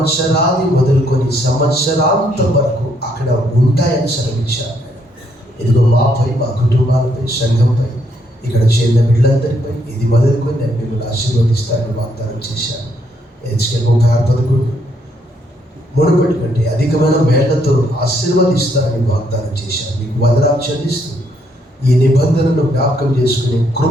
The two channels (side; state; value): both; normal; correlation 0.72